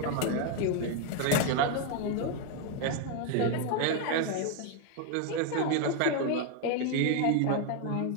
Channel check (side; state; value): both; different; correlation 0.01